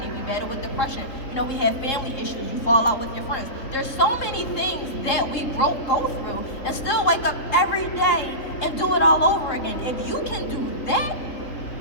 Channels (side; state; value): right; late; 3.7 ms